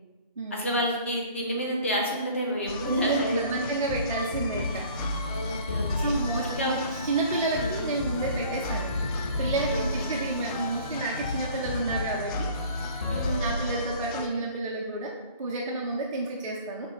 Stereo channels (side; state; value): both; inverted; correlation -0.49